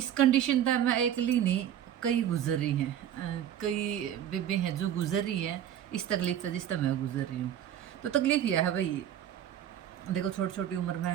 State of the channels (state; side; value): quieter; left; 10.4 dB